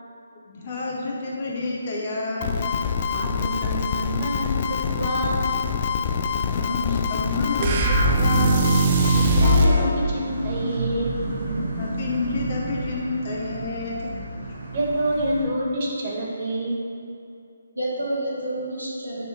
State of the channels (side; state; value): both; inverted; correlation -0.68